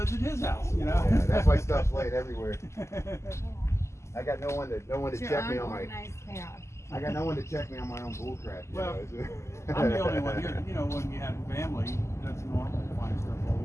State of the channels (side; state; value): right; late; 0.13 ms